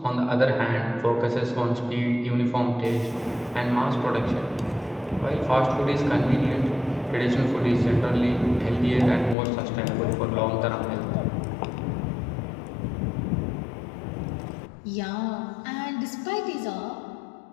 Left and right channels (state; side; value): drops out; right; at 9.3 s